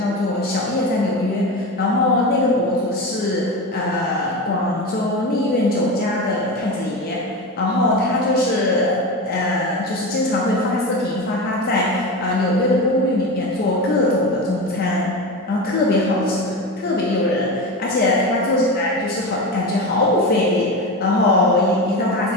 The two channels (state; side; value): normal; both; correlation 0.23